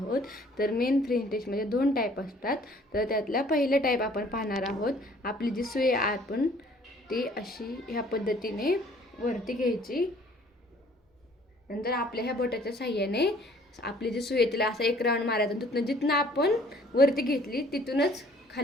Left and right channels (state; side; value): normal; both; correlation 0.56